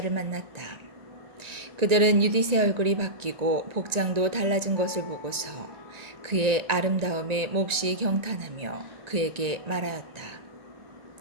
만났다. 그들은 유딧의 얼굴이 바뀌고 복장도 달라진 것을 보고서 그의 아름다움에 몹시 경탄하며 그에게 말하였다.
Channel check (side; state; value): left; late; 1.9 ms